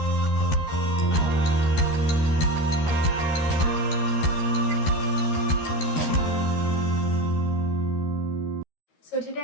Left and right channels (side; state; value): right; late; 13 ms